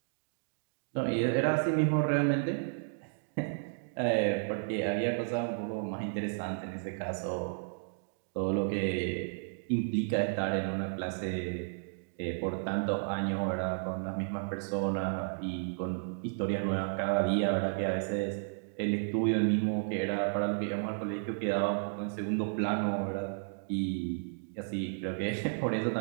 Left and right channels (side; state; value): left; silent; digital silence